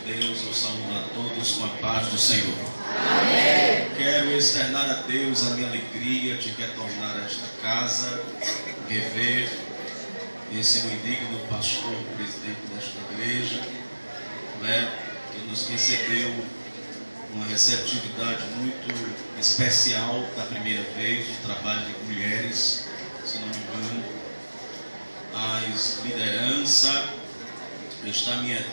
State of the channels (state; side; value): inverted; both; correlation -1.00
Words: eu saúdo a todos com a paz do Senhor. Amém. Quero externar a Deus a minha alegria de retornar a esta casa, rever esse meu indigno pastor, presidente desta igreja, que nos recebeu uma receptividade muito especial da primeira vez, o trabalho de mulheres, se não me engano. As lideranças, está minha